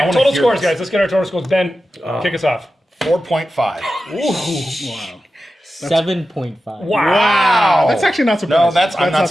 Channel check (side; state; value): both; normal; correlation 0.92